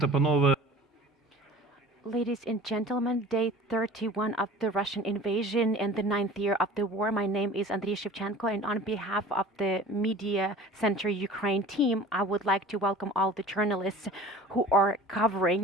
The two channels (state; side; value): normal; both; correlation 0.43